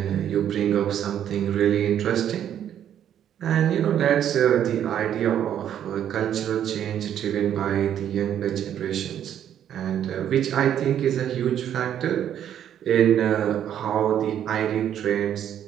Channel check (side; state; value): left; quieter; 10.1 dB